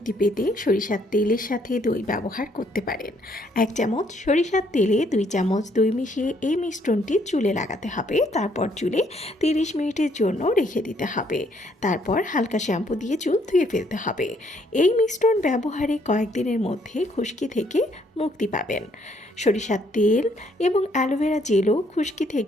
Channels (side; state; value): both; normal; correlation 0.68